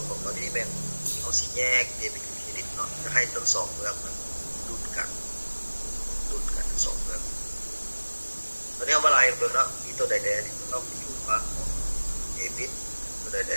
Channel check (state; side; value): inverted; both; correlation -1.00